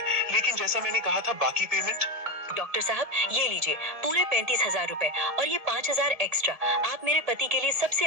लेकिन जैसा मैंने कहा था, बाकी पेमेंट? डॉक्टर साहब, ये लीजिए पूरे 35,000 रुपए और ये 5,000 एक्स्ट्रा। आप मेरे पति के लिए सबसे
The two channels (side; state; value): left; late; 1.7 ms